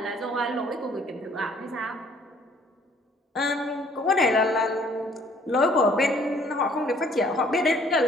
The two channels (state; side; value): normal; both; correlation 0.60